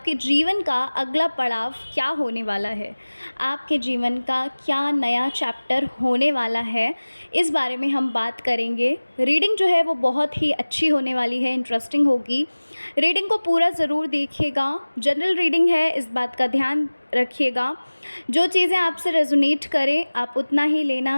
जीवन का अगला पड़ाव क्या होने वाला है, आपके जीवन का क्या नया चैप्टर होने वाला है, इस बारे में हम बात करेंगे। रीडिंग जो है वो बहुत ही अच्छी होने वाली है, इंटरेस्टिंग होगी। रीडिंग को पूरा ज़रूर देखिएगा। जनरल रीडिंग है, इस बात का ध्यान रखिएगा। जो चीज़ें आपसे रेजोनेट करें आप उतना ही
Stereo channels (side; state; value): both; inverted; correlation -1.00